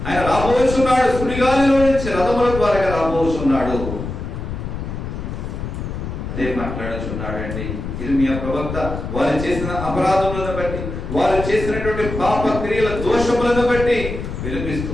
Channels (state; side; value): noise; left; rumble, 6 dB below the sound